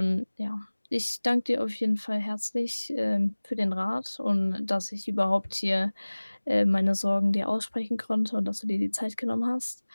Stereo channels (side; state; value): both; inverted; correlation -1.00